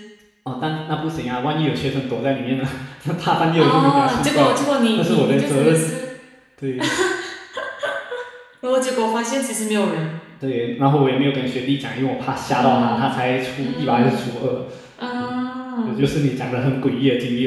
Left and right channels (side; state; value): both; identical; correlation 1.00